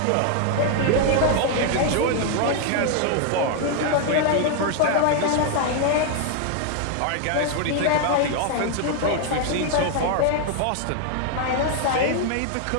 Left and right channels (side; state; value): both; different; correlation 0.00